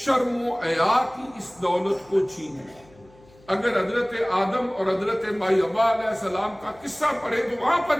و حیا کی اس دولت کو چھینے۔ اگر حضرت آدم اور حضرت مائی حوا علیہ السلام کا قصہ پڑھے تو وہاں پر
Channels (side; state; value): left; noise; hum, 27 dB below the sound